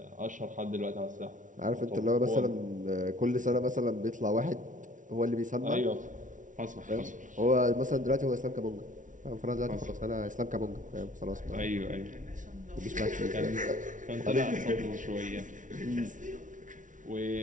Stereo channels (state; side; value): late; left; 0.37 ms